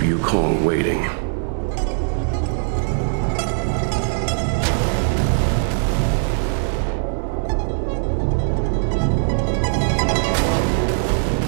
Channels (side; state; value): left; silent; digital silence